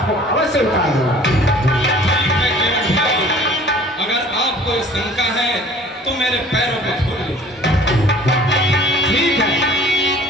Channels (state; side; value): normal; both; correlation 0.50